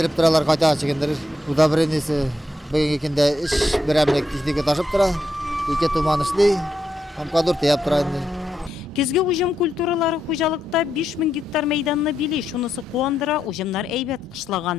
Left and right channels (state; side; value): normal; both; correlation 0.82